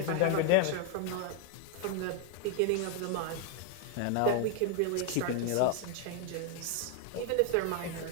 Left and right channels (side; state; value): both; different; correlation 0.01